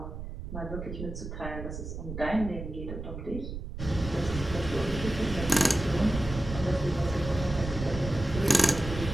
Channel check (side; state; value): right; noise; rumble, 8 dB below the sound